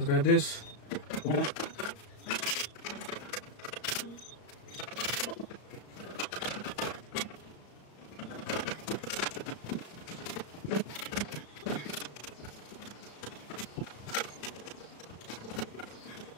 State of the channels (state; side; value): late; right; 34 ms